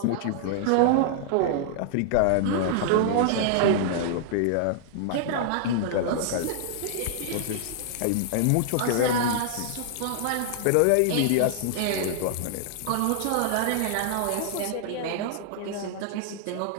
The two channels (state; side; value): different; both; correlation -0.01